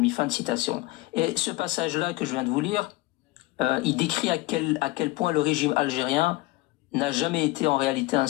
fin de citation. Et ce passage-là que je viens de vous lire, il décrit à quel point le régime algérien n'a jamais été en réalité un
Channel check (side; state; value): right; quieter; 20.4 dB